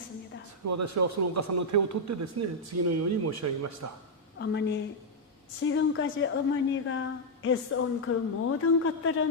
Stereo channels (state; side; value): normal; both; correlation -0.03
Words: 私はそのお母さんの手を取ってですね、次のように申し上げました。 어머니, 지금까지 어머니가 애써온 그 모든